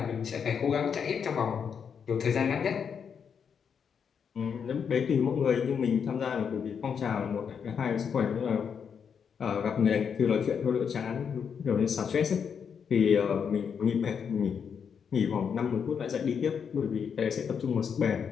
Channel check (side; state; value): right; quieter; 7.0 dB